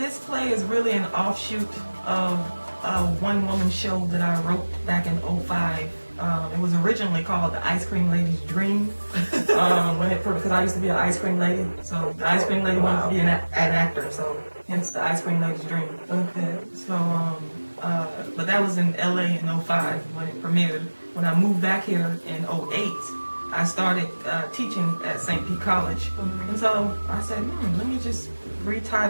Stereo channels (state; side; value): inverted; both; correlation -1.00